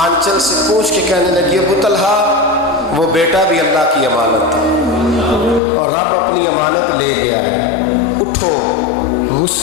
سے پوچھ کے کہنے لگی ابو طلحہ وہ بیٹا بھی اللہ کی امانت تھا اور رب اپنی امانت لے گیا ہے، اٹھو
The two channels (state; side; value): drops out; right; at 5.6 s